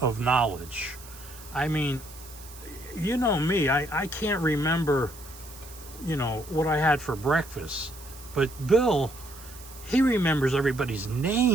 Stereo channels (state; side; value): noise; right; hiss, 18 dB below the sound